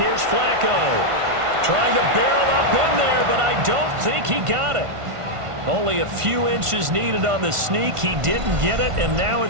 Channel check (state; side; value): late; left; 1.5 ms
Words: Flacco. Trying to barrel up in there, but I don't think he got it. Only a few inches needed on the sneak. He didn't get it, and now